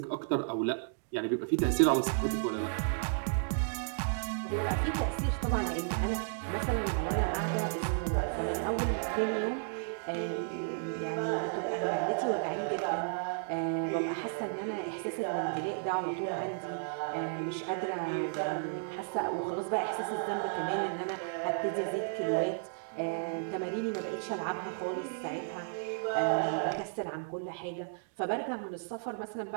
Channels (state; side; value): silent; left; digital silence